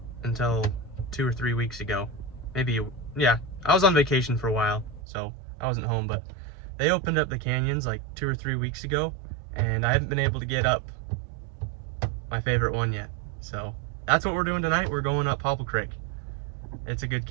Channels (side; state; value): left; drops out; at 5.0 s